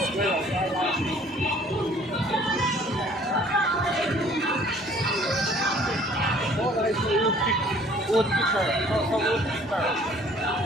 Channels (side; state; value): both; normal; correlation 0.56